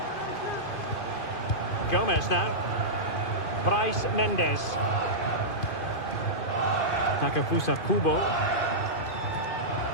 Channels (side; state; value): right; late; 2.5 ms